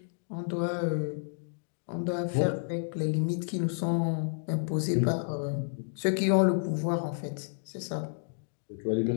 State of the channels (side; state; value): right; silent; digital silence